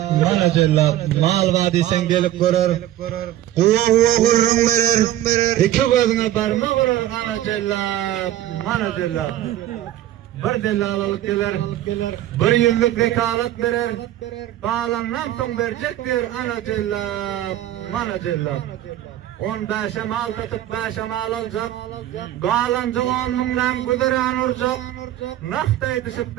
mana cellap. Mal vadisen gelip görür. Huwa gurrun berer. Iki gözüne barma vurar ana cellap, mana cellap. Bir dellalalyk geler, bir ýyllyk vekalat berer. Bağlandan soň berjekdir ana cellap, mana cellap. 15 mal tutup 5 mal aljak. Galanjy 10 mingdan güdüren urjak. Naqtay düşüp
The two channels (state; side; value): quieter; left; 13.2 dB